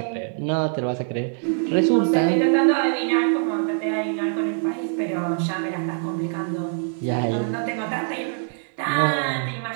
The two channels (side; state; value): left; silent; 63 dB below the other